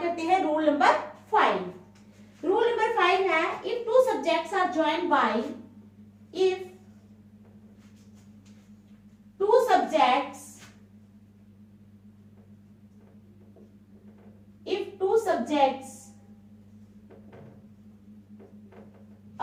करते हैं रूल नंबर 5। रूल नंबर 5 है, if two subjects are joined by if two subjects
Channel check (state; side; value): identical; both; correlation 1.00